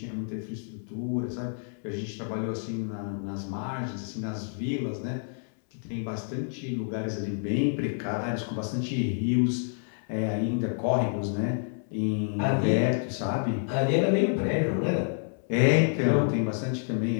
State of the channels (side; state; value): right; silent; 59 dB below the other